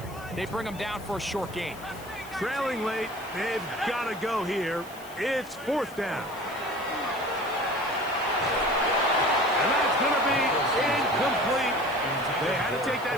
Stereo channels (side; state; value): left; noise; hiss, 20 dB below the sound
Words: they bring him down for a short gain. Trailing late, they've got to go here. It's fourth down. And that's going to be incomplete. They had to take